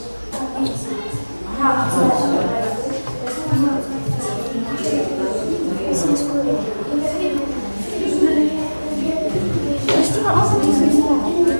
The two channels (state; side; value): inverted; both; correlation -1.00